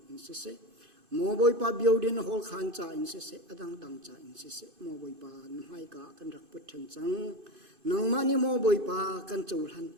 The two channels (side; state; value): left; late; 2.5 ms